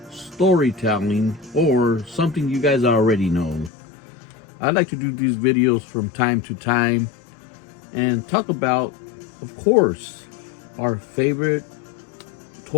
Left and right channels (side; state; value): right; drops out; at 3.7 s